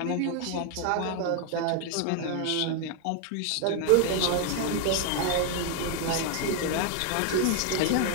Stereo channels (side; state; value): both; different; correlation 0.00